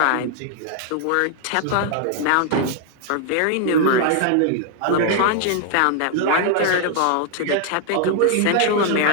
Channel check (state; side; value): different; both; correlation 0.00